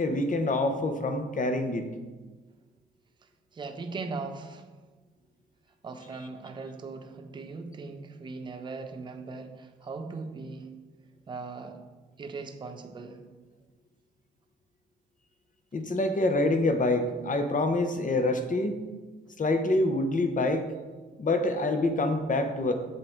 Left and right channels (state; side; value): normal; both; correlation 0.52